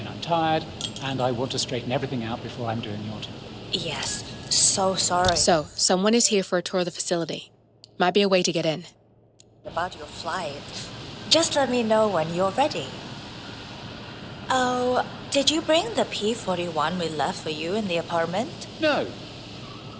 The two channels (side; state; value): both; identical; correlation 1.00